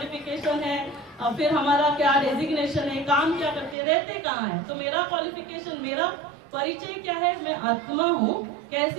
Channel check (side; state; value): left; drops out; at 3.8 s